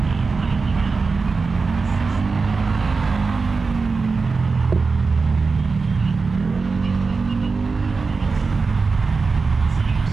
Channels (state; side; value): quieter; left; 4.4 dB